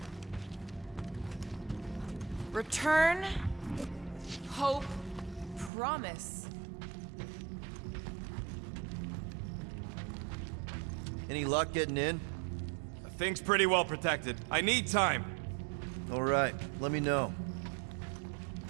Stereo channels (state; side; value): drops out; left; at 5.7 s